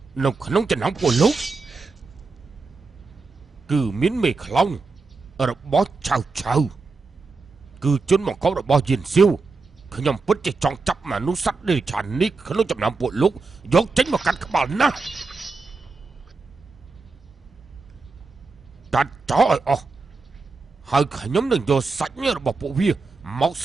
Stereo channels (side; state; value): left; quieter; 4.1 dB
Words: នៅក្នុងចំណោមពួកលោកគឺមានមេខ្លោងរបស់ឆៅគឺជនបង្កប់របស់យិនសៀវខ្ញុំពិតជាចង់ចាប់មនុស្សសត្វនេះឆាននេះក្នុងចំណោមពួកលោកយកចេញមកកាត់ក្បាលណាកាត់ចោលឲ្យអស់ហើយខ្ញុំនឹងយកសាច់របស់ពួកវាមក